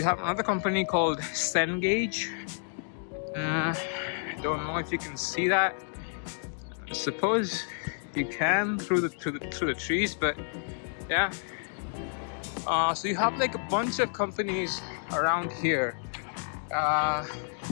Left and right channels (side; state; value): right; silent; 58 dB below the other